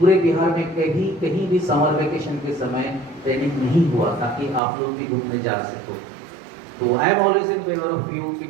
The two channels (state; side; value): drops out; left; at 4.6 s